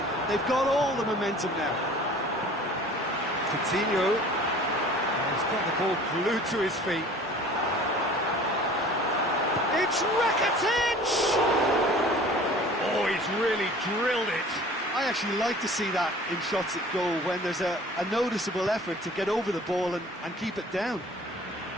They've got all the momentum now. Coutinho has got the ball glued to his feet. It's Rakitic! Oh, he's really drilled it. I actually like to see that in shots at goal when there's a noticeable effort to get over the ball and keep it down.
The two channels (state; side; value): normal; both; correlation 0.46